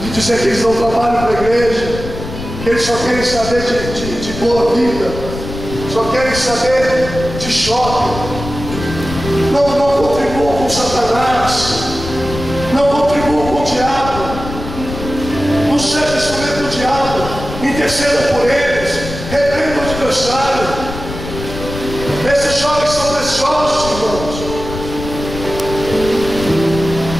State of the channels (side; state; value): left; noise; rumble, 9 dB below the sound